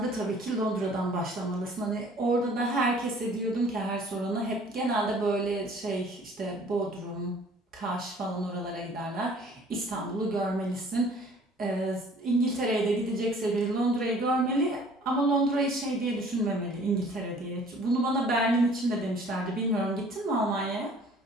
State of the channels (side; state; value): both; normal; correlation 0.53